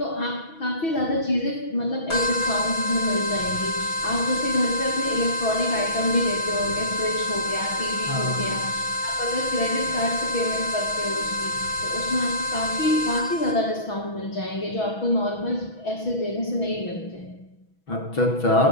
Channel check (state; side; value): late; right; 6.1 ms